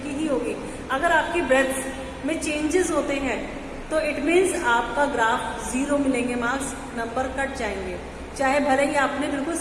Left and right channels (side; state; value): both; identical; correlation 1.00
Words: की ही होगी. अगर आपकी ब्रेथ में चेंजेस होते हैं तो इट मीन्स आपका ग्राफ 0 मिलेंगे मार्क्स, नंबर कट जाएंगे. चाहे भले ही आपने बिल्कुल